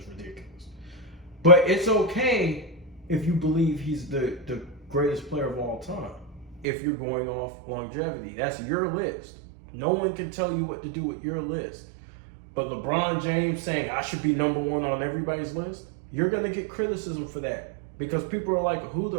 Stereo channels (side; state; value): left; drops out; at 6.7 s